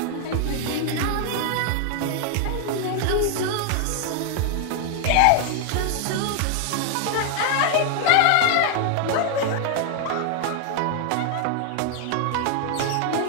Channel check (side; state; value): both; different; correlation 0.00